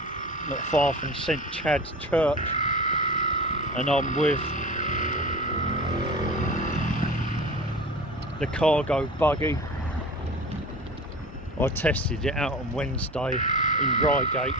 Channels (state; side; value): normal; both; correlation 0.35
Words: not far from St Chad's Church, and I'm with the Cargo Buggy. I tested it out on Wednesday in Reigate,